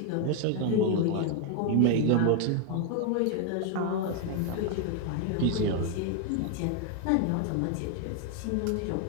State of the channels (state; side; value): different; both; correlation 0.01